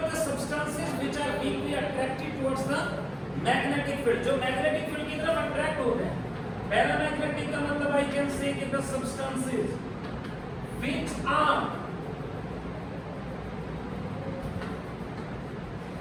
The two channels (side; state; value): both; identical; correlation 1.00